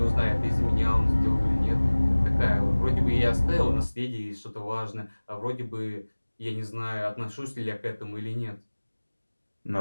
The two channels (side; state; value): both; inverted; correlation -1.00